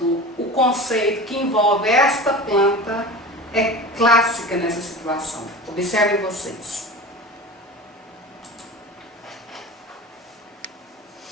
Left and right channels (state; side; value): normal; both; correlation 0.33